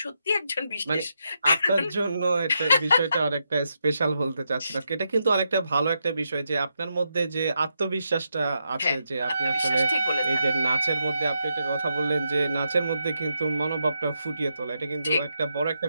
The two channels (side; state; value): both; inverted; correlation -0.83